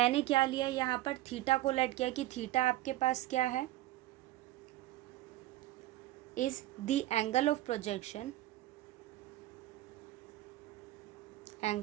क्या लिया यहाँ पर? थीटा को लेट किया कि थीटा आपके पास क्या है? is the angle of projection,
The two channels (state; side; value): quieter; left; 16.2 dB